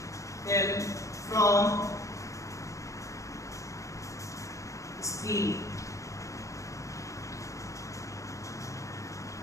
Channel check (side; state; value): right; late; 0.15 ms